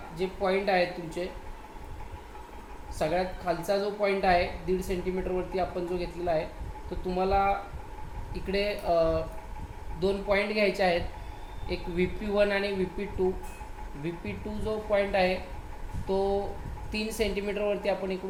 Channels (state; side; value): identical; both; correlation 1.00